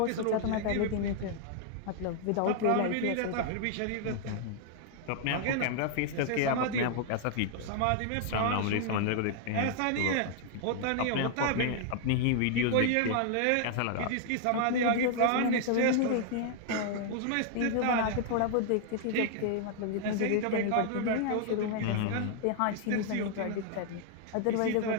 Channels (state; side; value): different; both; correlation 0.00